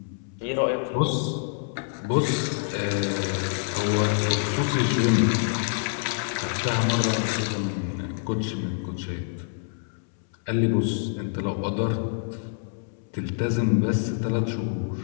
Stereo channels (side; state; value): right; silent; 61 dB below the other